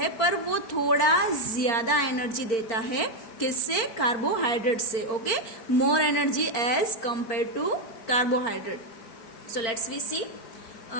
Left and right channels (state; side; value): late; right; 4.4 ms